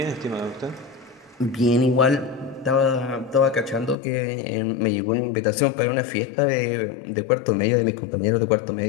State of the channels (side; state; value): right; drops out; at 4.0 s